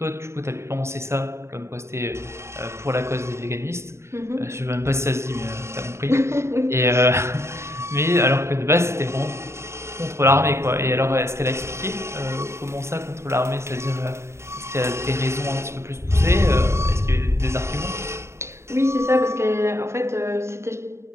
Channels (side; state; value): left; late; 0.13 ms